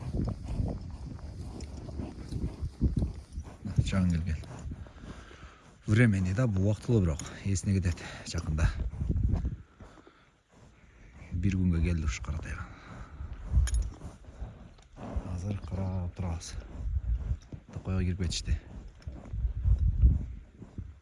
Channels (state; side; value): identical; both; correlation 1.00